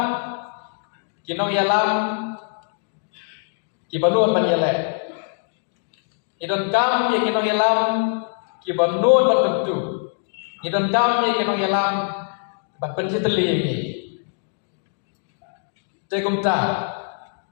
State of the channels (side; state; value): right; silent; digital silence